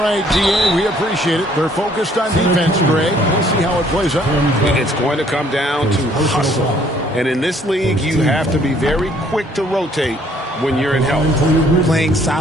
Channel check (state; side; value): normal; both; correlation 0.62